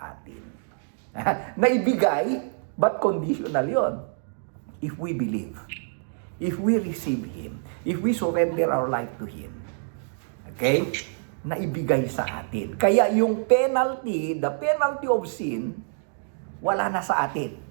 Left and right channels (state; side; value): silent; left; digital silence